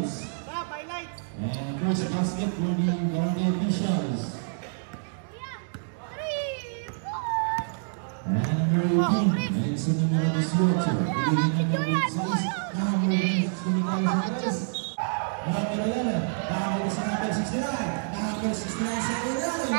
And first basket for the Barangay Officials. And number 18, ayun sa numero 18. Piligin numero 6. Number 6, number 11, nakakita sa number 69. Number 69 sa ilalim.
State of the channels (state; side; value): silent; left; digital silence